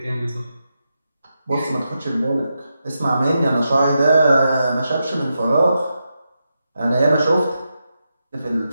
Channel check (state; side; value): inverted; both; correlation -0.87